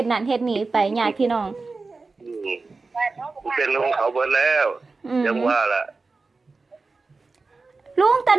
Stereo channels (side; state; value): left; quieter; 3.9 dB